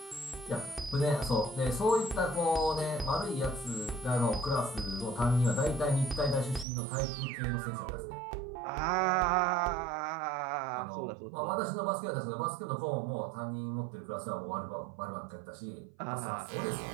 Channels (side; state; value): left; drops out; at 6.7 s